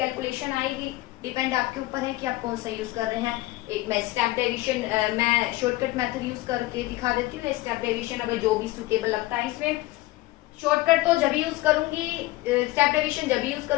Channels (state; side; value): quieter; right; 18.6 dB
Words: आएगी। डिपेंड आपके ऊपर है कि आप कौन सा यूज कर रहे हैं। एक मैं स्टेप डेविएशन, मैं शॉर्टकट मेथड यूज करके दिखा देती हूँ। स्टेप डेविएशन अगर जो भी सुटेबल लगता है इसमें, शॉर्टकट तो जब यूज करूंगी, स्टेप डेविएशन जब यूज